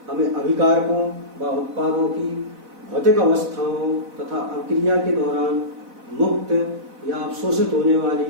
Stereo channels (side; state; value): left; late; 4.0 ms